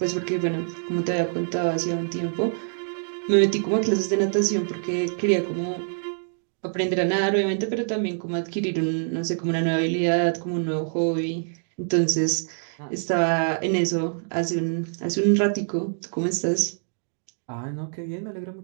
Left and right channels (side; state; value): left; silent; digital silence